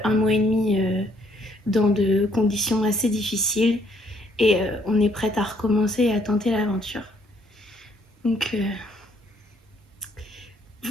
1 mois et demi dans de conditions assez difficiles et on est prête à recommencer et à tenter l'aventure. Donc,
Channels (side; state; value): both; normal; correlation 0.67